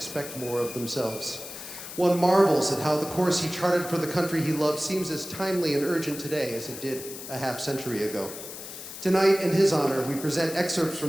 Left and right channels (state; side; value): noise; left; hiss, 11 dB below the sound